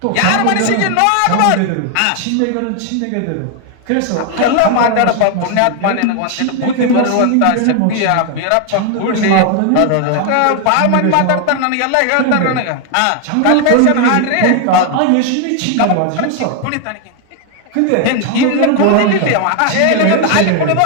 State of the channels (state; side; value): different; both; correlation 0.01